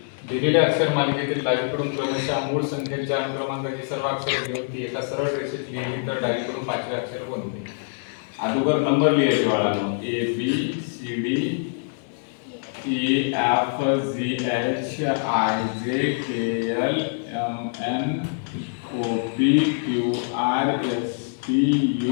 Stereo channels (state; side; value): silent; right; digital silence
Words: दिलेल्या अक्षर मालिकेतील डावीकडून क्रमशः मूळ संख्येच्या अनुक्रमांकाची सर्व अक्षरे घेऊन ती एका सरळ रेषेत लिहिली तर डावीकडून पाचवे अक्षर कोणते? अगोदर नंबर लिहायचे बाळांनो. A B C D E F G H I J K L M N O P Q R S T